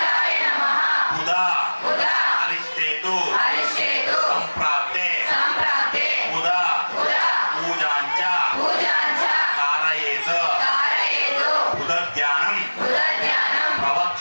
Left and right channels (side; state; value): both; inverted; correlation -1.00